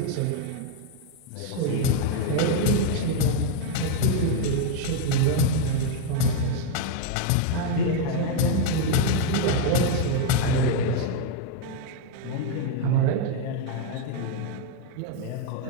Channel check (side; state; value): both; different; correlation 0.01